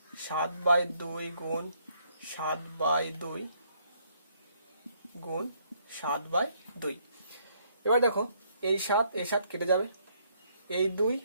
7/2 গুণ 7/2 গুণ 7/2। এবার দেখো এই 7 কেটে যাবে, এই 2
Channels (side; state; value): both; inverted; correlation -0.69